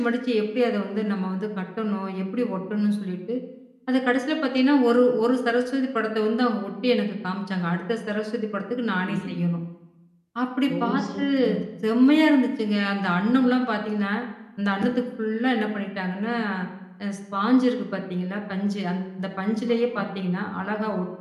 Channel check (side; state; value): both; identical; correlation 1.00